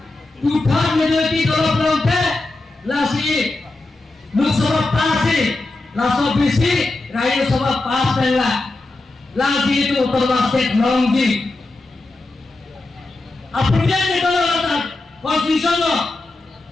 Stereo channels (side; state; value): right; quieter; 3.0 dB